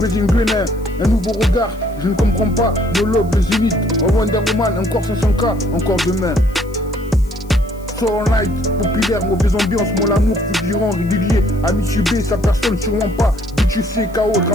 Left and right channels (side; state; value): left; noise; hiss, 27 dB below the sound